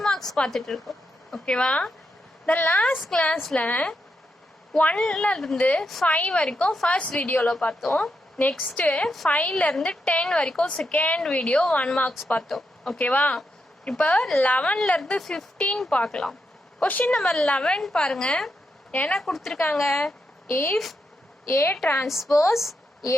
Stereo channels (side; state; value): both; normal; correlation 0.84